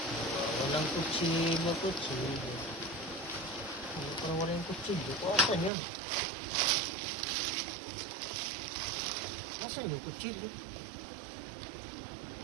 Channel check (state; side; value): drops out; left; at 5.7 s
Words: Walang kutsilyo. Parang wala yung kutsilyo ko. Asan yun? Asan yung kutsilyo?